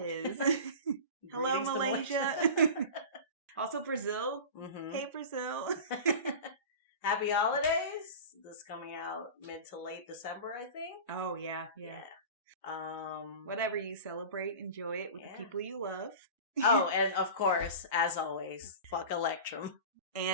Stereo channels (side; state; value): both; inverted; correlation -0.33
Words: Hello, Malaysia. Also, Brazil. Hey, Brazil. Happy holidays. This is coming out mid to late December, I think. Oh, yeah. Whatever you celebrate, enjoy it with the people you love. Oh, and of course, as always, fuck Electrum.